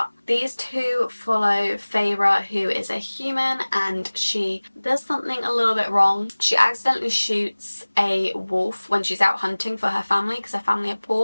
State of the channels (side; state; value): both; inverted; correlation -1.00